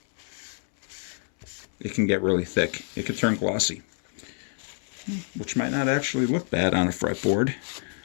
it can get really thick. It can turn glossy, which might not actually look bad on a fretboard.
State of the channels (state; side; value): silent; right; 59 dB below the other